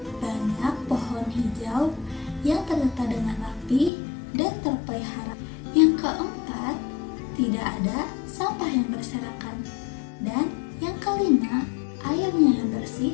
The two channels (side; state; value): right; drops out; at 3.9 s